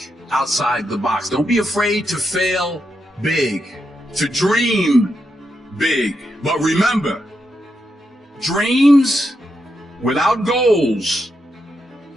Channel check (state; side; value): normal; both; correlation 0.84